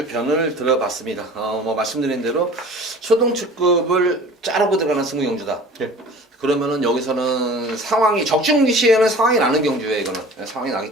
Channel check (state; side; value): normal; both; correlation 0.43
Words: 편을 들어봤습니다. 뭐 말씀드린 대로 초등축급을 자르고 들어가는 승부경주다. 예. 그러면은 여기서는 상황이 적중 시에는 상황이 나는 경주예요. 이거는 상황이